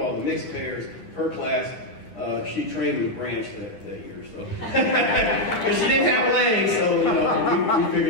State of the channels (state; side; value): late; right; 9.8 ms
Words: the mixed pairs, her class, she trained with Branch that year. So, because she didn't have legs, so we